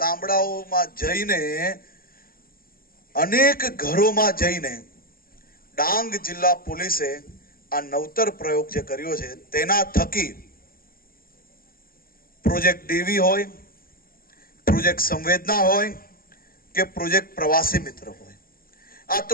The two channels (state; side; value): late; right; 0.42 ms